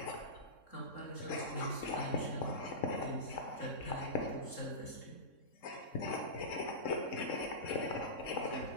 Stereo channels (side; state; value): right; late; 3.7 ms